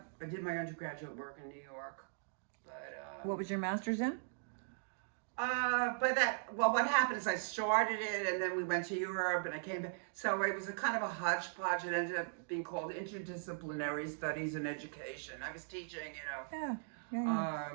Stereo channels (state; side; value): silent; left; digital silence